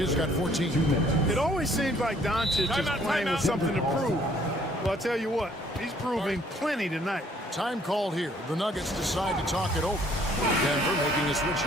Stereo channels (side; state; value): both; normal; correlation 0.62